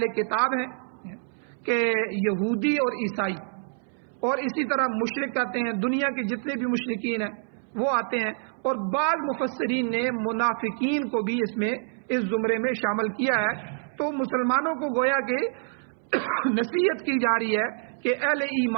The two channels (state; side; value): silent; left; 60 dB below the other